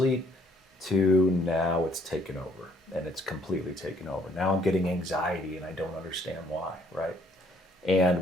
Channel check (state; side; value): normal; both; correlation 0.64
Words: to now it's taken over. And it's completely taken over. Now I'm getting anxiety and I don't understand why, right? And